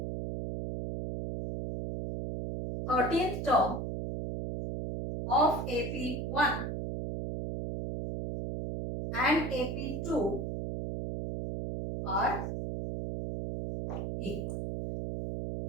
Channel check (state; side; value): noise; right; hum, 3 dB below the sound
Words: 13th term of AP1 and AP2 are equal.